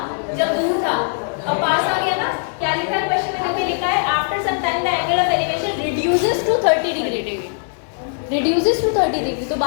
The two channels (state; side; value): silent; right; digital silence